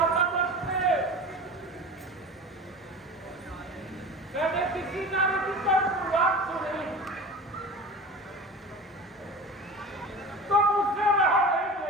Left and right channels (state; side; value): normal; both; correlation 0.34